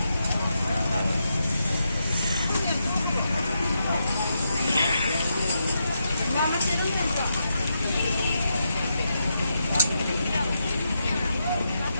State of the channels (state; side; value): inverted; both; correlation -0.83